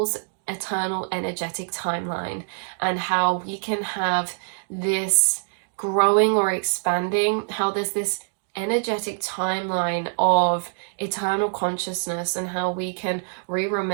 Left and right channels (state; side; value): silent; left; digital silence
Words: eternal energetic timeline, and how we can have this growing or expanding, how there's this energetic timeline of eternal consciousness, and how we can